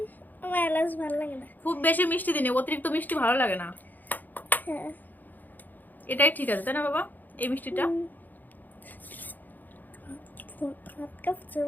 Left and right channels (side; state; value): right; late; 0.085 ms